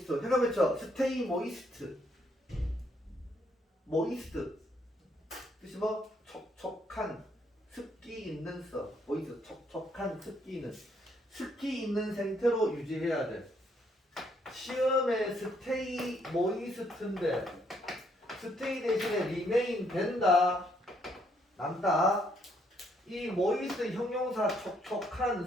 해가 맺혀 stay moist moist 뜻이 뭐 촉촉한 습기 있는 써 moist 촉촉한 습기 있는 상태로 유지해야 돼. 시험에 stay moist인데 stay 대신에 remain 된다 남다. 이 moist 형용사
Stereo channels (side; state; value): both; normal; correlation 0.71